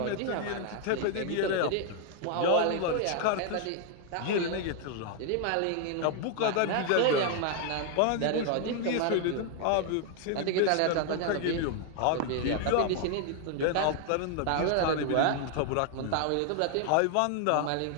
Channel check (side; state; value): both; different; correlation 0.00